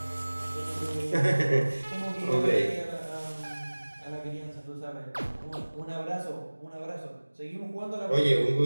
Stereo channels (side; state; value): both; inverted; correlation -1.00